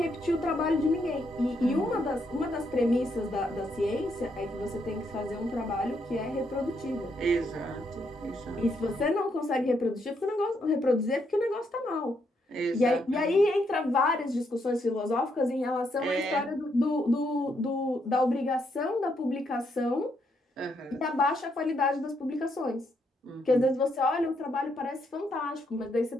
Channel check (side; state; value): both; normal; correlation 0.76